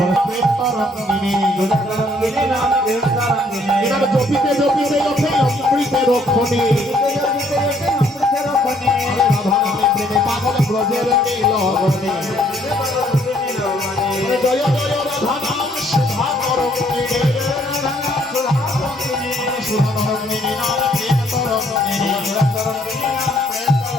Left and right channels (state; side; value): normal; both; correlation 0.65